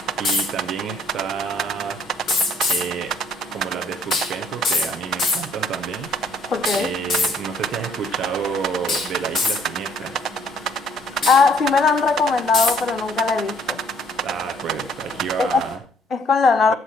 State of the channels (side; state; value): both; normal; correlation 0.63